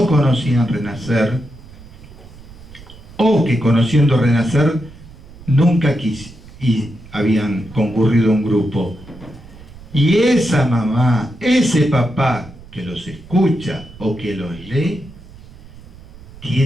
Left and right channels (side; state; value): right; noise; rumble, 19 dB below the sound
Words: conocían Renacer, o que conociendo Renacer nunca y habían concurrido a un grupo. Y esa mamá, ese papá que los escucha o que los lee,